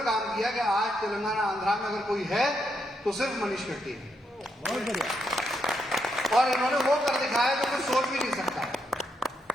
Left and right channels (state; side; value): normal; both; correlation 0.80